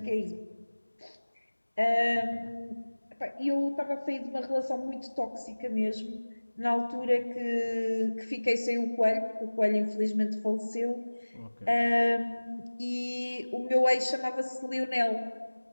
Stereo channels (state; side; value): inverted; both; correlation -1.00